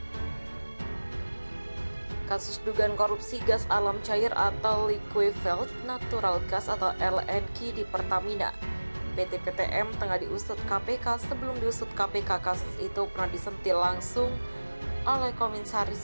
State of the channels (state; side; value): inverted; both; correlation -1.00